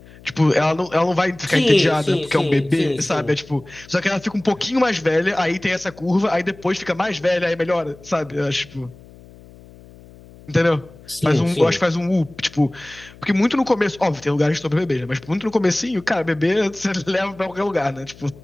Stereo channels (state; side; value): noise; left; hum, 22 dB below the sound